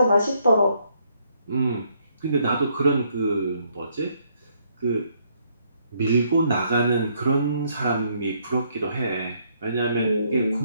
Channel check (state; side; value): inverted; both; correlation -0.71